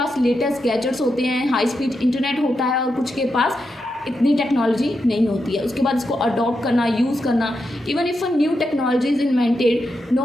लेटेस्ट गैजेट्स होते हैं, हाई स्पीड इंटरनेट होता है, और कुछ के पास इतनी टेक्नोलॉजी नहीं होती है। उसके बाद इसको अडॉप्ट करना, यूज़ करना, even if a new technology is invented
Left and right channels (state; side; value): normal; both; correlation 0.86